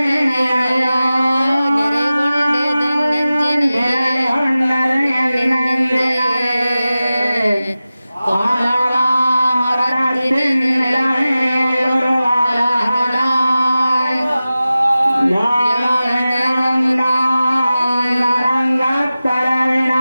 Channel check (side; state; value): both; inverted; correlation -0.95